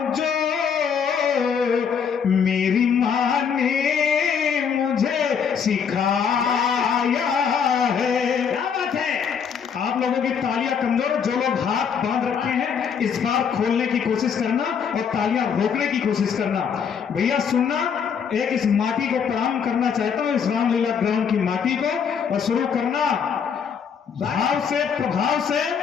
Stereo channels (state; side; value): quieter; right; 6.9 dB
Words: जो, मेरी माँ ने मुझे सिखाया है। क्या बात है। आप लोगों की तालियां कमजोर, जो लोग हाथ बांध रखे हैं इस बार खोलने की कोशिश करना और तालियां रोकने की कोशिश करना। भैया सुनना, एक इस माटी को प्रणाम करना चाहता हूं, इस रामलीला ग्राउंड की माटी को, और शुरू करना भाव से, प्रभाव से।